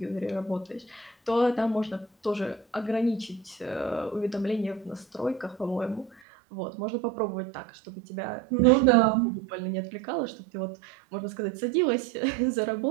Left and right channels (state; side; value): drops out; left; at 6.2 s